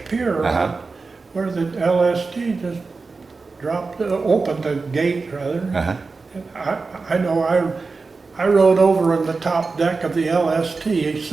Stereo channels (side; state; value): left; quieter; 4.2 dB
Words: pier, where the LST just opened the gate rather. I know I rode over on the top deck of the LST,